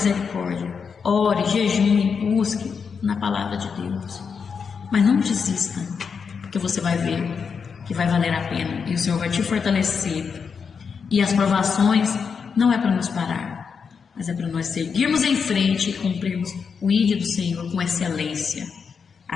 Ore, jejue, busque na palavra de Deus. Mas não desista, porque você vai ver que vai valer a pena. E o Senhor vai te fortalecer. E as provações não é para nos parar, mas é para nós seguirmos em frente e cumprirmos o ID do Senhor com excelência.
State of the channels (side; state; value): right; quieter; 6.0 dB